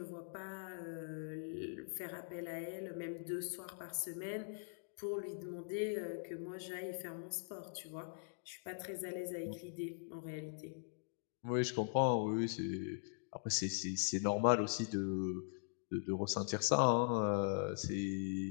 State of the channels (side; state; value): right; silent; digital silence